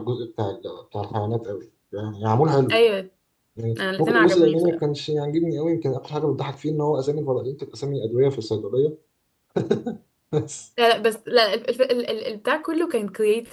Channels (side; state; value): both; identical; correlation 1.00